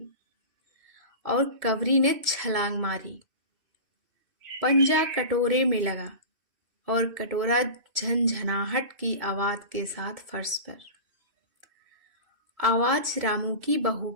और कबरी ने छलांग मारी। पंजा कटोरे में लगा और कटोरा झनझनाहट की आवाज के साथ फर्श पर। आवाज रामू की बहू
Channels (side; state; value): left; late; 2.6 ms